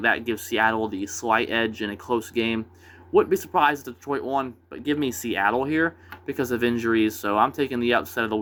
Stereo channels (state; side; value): identical; both; correlation 1.00